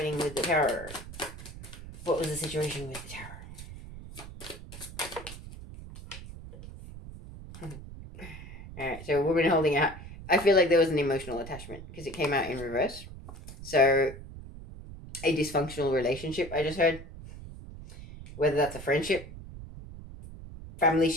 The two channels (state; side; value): noise; right; rumble, 14 dB below the sound